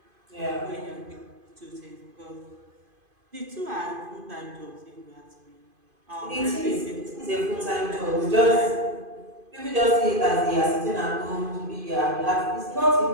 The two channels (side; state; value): left; late; 2.5 ms